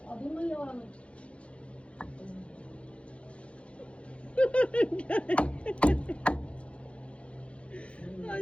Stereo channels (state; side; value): late; right; 0.061 ms